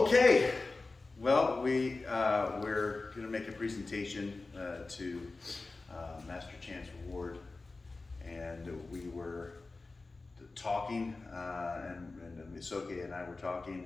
well, we're going to make a presentation to Master Chance Ward, and we were talking, and Soke and I were talking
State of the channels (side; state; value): right; quieter; 3.6 dB